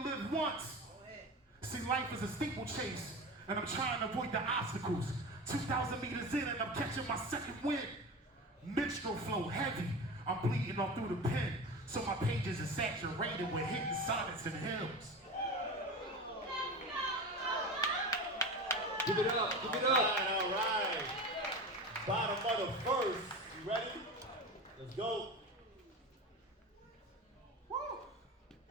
live once. See, life is a steeplechase, and I'm trying to avoid the obstacles. 2,000 meters in, and I'm catching my second wind. Minstrel flow heavy, I'm bleeding all through the pen, so my pages are saturated with hidden sonnets and hymns. Give it up, give it up. All right. Bottom of the first. You ready? Let's go. Woo!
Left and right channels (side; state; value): both; normal; correlation 0.28